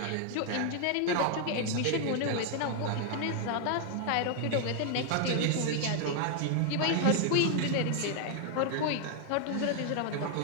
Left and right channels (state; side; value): different; both; correlation 0.00